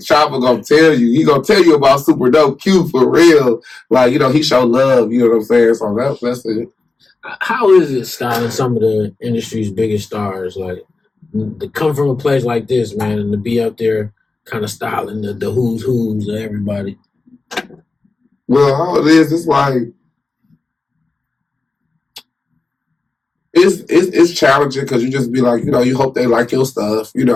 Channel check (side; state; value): right; quieter; 3.7 dB